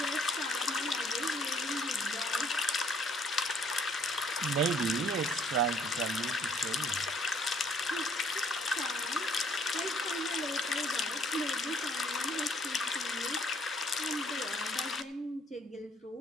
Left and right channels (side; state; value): both; normal; correlation 0.63